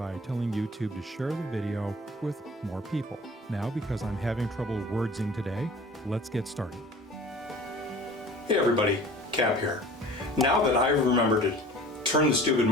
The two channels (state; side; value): normal; both; correlation 0.44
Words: telling YouTube to share the video with more people. Now, because I'm having trouble wordsing today, let's get started. Hey everybody, Cap here. Now that I've remembered to turn the stupid